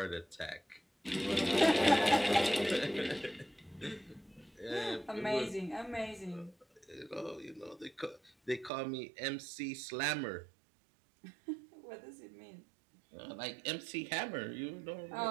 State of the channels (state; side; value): drops out; left; at 8.7 s